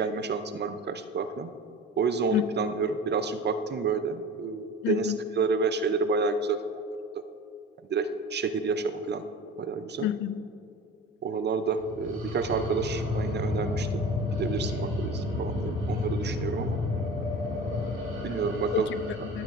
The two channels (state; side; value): normal; both; correlation 0.36